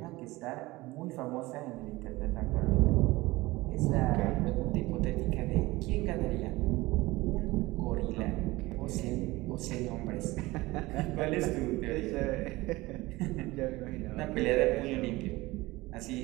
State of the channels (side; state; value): left; quieter; 20.3 dB